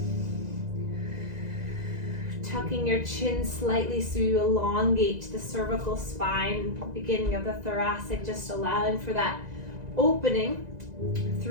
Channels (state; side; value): late; left; 2.0 ms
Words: Tucking your chin slightly so you elongate the cervical spine, beginning of the thoracic, just allowing for that opening